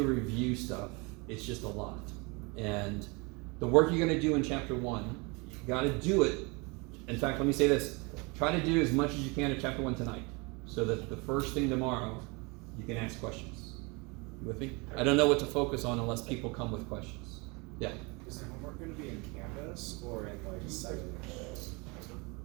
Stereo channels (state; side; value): quieter; left; 28.5 dB